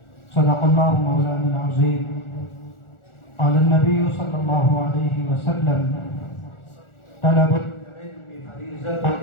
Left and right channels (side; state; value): right; late; 1.4 ms